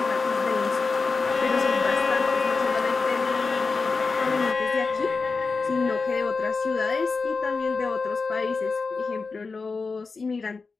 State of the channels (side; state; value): right; quieter; 4.3 dB